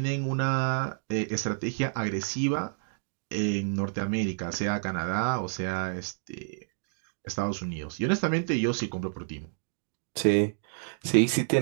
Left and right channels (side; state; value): left; silent; digital silence